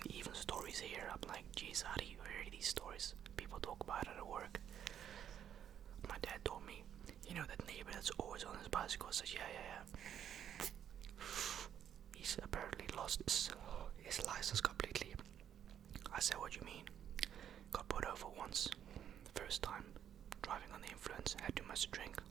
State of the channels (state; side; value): quieter; left; 9.5 dB